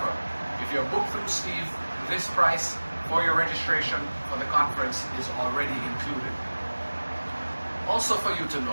if you're booked through Steve, this price for your registration for the conference is already included. Also for you to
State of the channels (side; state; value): both; inverted; correlation -1.00